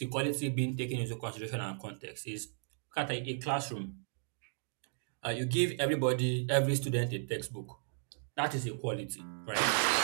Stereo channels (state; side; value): silent; left; digital silence